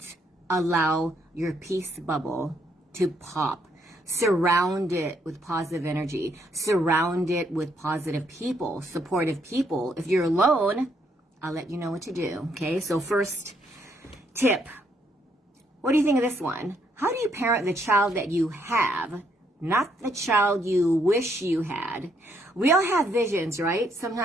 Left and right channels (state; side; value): normal; both; correlation 0.72